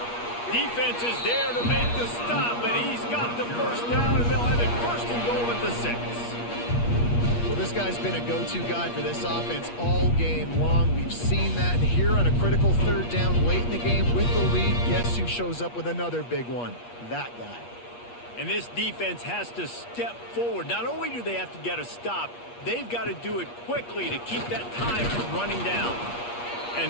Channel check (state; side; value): late; right; 8.4 ms